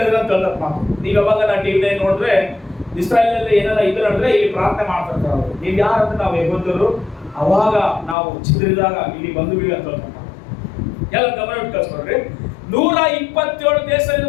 ಹೇಳ್ತಾರೆ ಮಾತು. ನೀವು ಯಾವಾಗ ನಾ ಟಿವಿ ನೋಡಿದ್ರೆ ಇಸ್ರಾಯೇಲ್ ಅಲ್ಲಿ ಏನಾರ ಇದು ನಡೆದ್ರೆ ಇಲ್ಲಿ ಪ್ರಾರ್ಥನೆ ಮಾಡ್ತಿರ್ತಾರೆ ಅವರು. ನೀವು ಯಾರಂದ್ರೆ ನಾವು ಯಹೂದ್ಯರು, ಅವಾಗ ನಾವು ಚಿದ್ರಿದಾಗ ಇಲ್ಲಿ ಬಂದು ಬೀಳಿ ಅಂತ ಹೇಳ್ತಾರೆ. ಎಲ್ಲ ಗಮನ ಇಟ್ಟು ಕಳ್ಸ್ಕೊಡ್ರಿ. 127 ದೇಶ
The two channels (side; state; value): right; drops out; at 8.2 s